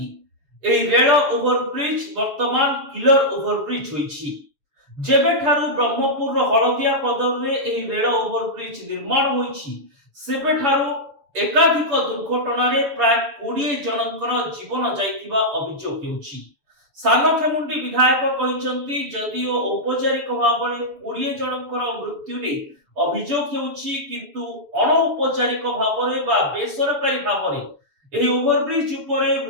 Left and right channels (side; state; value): left; late; 6.9 ms